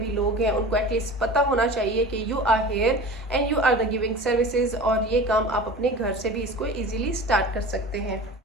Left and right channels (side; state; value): both; normal; correlation 0.36